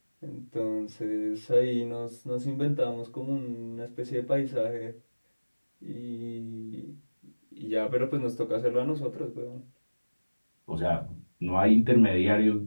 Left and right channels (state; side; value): inverted; both; correlation -1.00